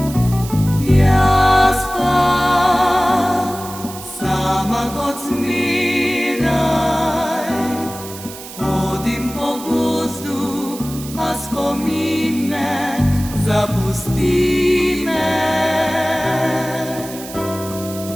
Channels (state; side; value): noise; right; hiss, 14 dB below the sound